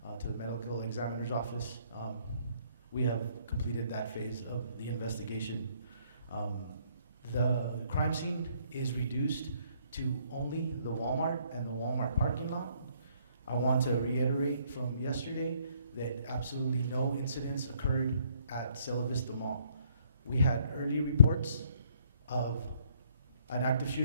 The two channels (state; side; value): inverted; both; correlation -0.65